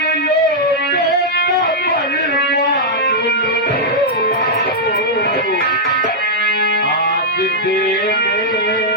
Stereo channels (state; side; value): normal; both; correlation -0.07